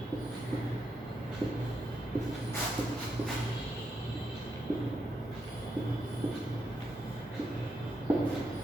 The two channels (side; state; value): both; normal; correlation 0.82